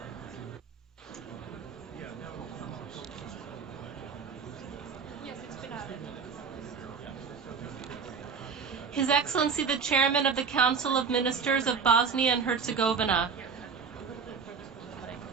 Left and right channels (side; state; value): left; quieter; 5.8 dB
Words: His Excellency the Chairman of the Council of Ministers of Bosnia and Herzegovina.